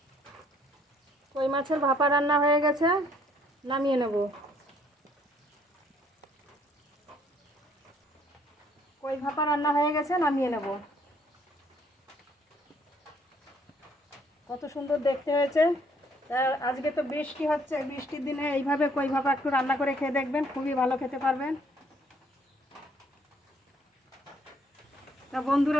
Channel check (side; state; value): both; normal; correlation 0.64